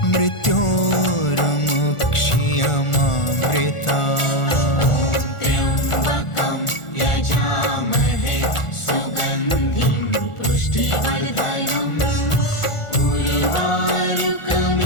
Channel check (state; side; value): late; right; 1.4 ms